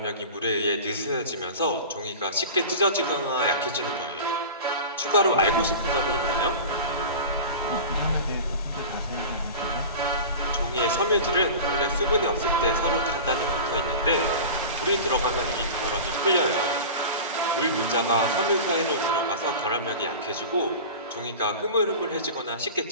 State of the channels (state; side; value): inverted; both; correlation -0.33